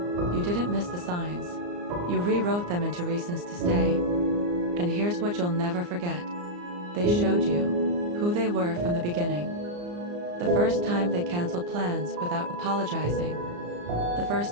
You didn't miss the signs. You rewrote them into reasons to stay. And here's what you'll never forget. They showed you who they were from the beginning. The first time they canceled plans without apologizing. The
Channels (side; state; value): left; late; 34 ms